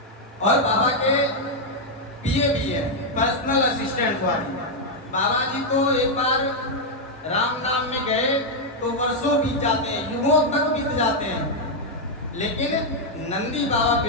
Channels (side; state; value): both; normal; correlation -0.01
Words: और बाबा के पीए भी है, पर्सनल असिस्टेंट वाली। बाबा जी तो एक बार राम नाम में गए तो वर्षों बीत जाते हैं, युगों तक बीत जाते हैं, लेकिन नंदी बाबा